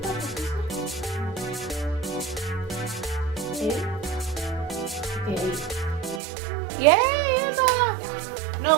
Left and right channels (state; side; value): drops out; left; at 6.2 s